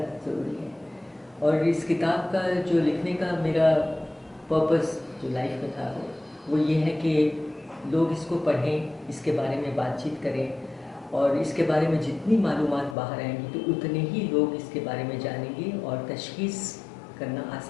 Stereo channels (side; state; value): right; drops out; at 13.0 s